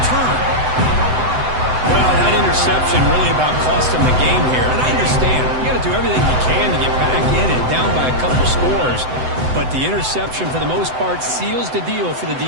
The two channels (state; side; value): late; left; 7.9 ms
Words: Well, that interception really about cost him the game here. And I understand. You got to do everything you can to get back in and down by a couple scores. But the interception, for the most part, seals the deal for the